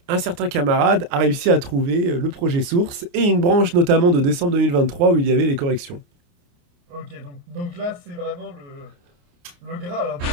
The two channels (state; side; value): late; left; 29 ms